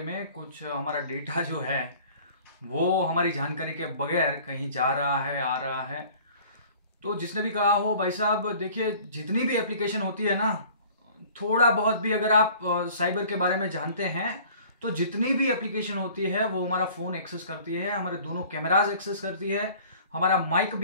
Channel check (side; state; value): both; inverted; correlation -0.49